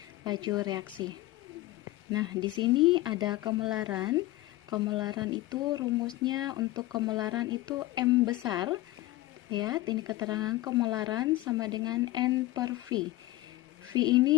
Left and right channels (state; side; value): quieter; right; 17.5 dB